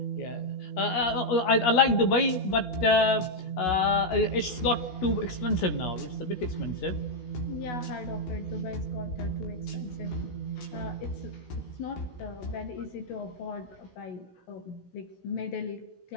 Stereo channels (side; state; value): right; late; 17 ms